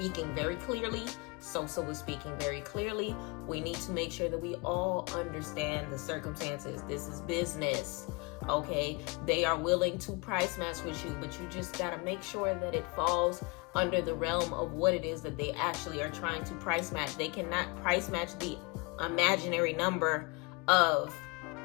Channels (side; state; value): right; quieter; 28.2 dB